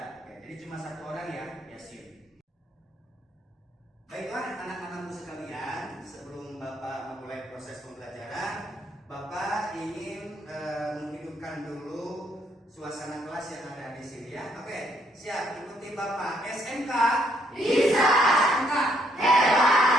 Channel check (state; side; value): normal; both; correlation 0.71